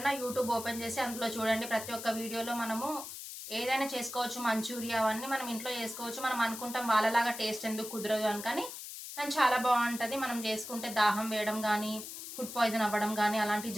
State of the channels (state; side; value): noise; left; hiss, 10 dB below the sound